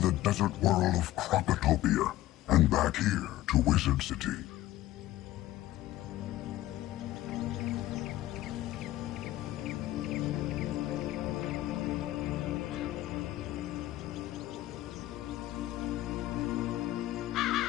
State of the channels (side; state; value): right; quieter; 15.4 dB